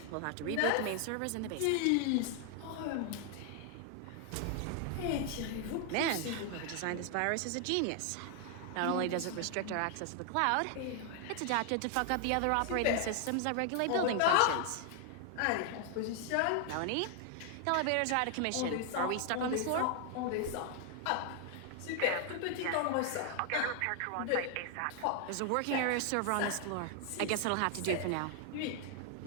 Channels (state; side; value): different; both; correlation 0.00